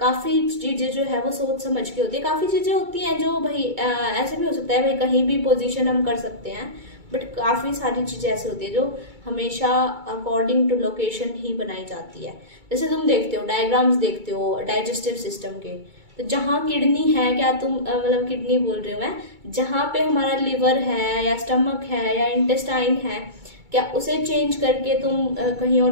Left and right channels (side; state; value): left; late; 2.3 ms